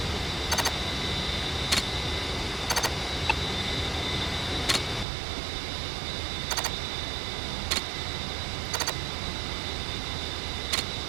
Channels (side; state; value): left; drops out; at 5.1 s